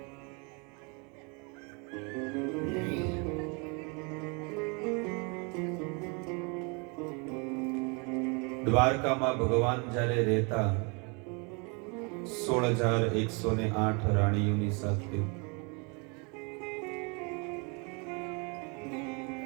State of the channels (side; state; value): left; quieter; 32.8 dB